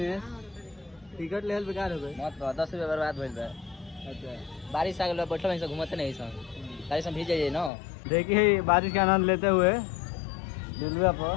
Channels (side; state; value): right; drops out; at 7.7 s